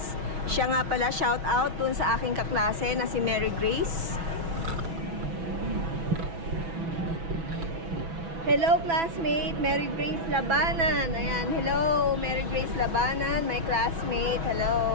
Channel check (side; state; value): left; late; 6.0 ms